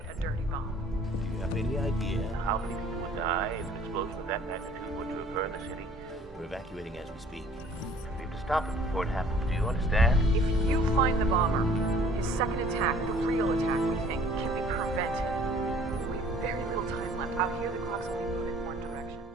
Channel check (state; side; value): normal; both; correlation 0.54